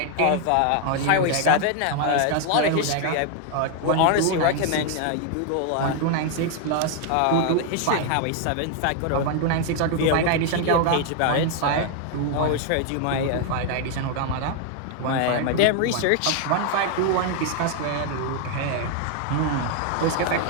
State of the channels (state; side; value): different; both; correlation 0.00